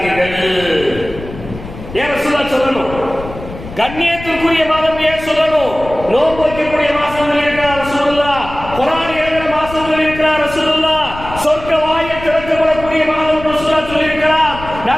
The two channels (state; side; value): noise; left; rumble, 13 dB below the sound